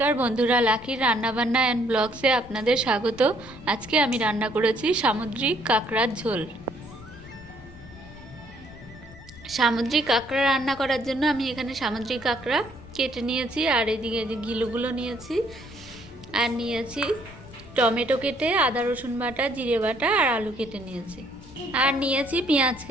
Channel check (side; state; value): left; noise; rumble, 19 dB below the sound